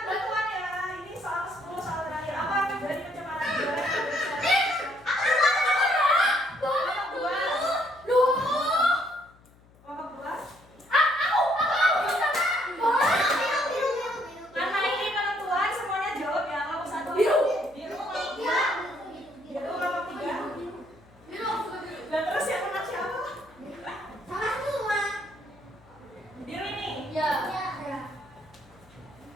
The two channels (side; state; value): left; noise; hum, 27 dB below the sound